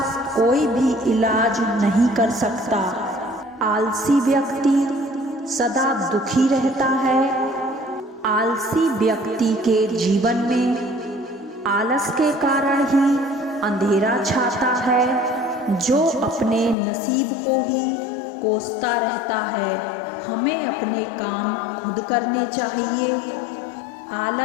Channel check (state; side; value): drops out; right; at 16.8 s